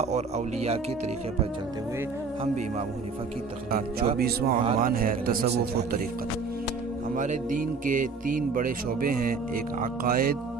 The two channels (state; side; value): quieter; left; 4.6 dB